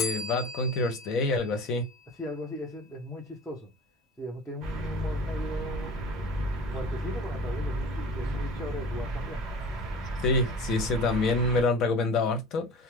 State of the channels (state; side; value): normal; both; correlation 0.38